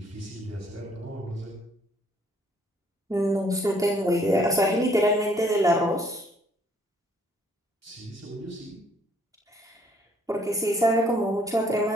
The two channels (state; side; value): normal; both; correlation 0.64